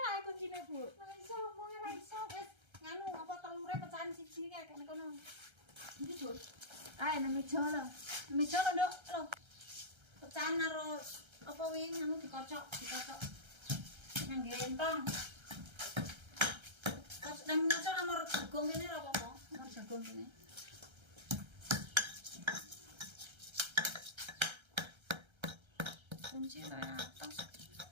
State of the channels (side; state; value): left; late; 1.3 ms